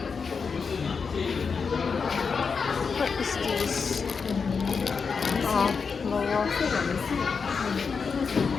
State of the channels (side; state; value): right; quieter; 5.4 dB